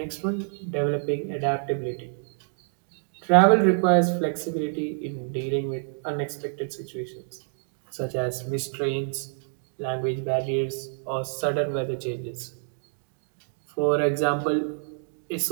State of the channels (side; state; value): left; silent; digital silence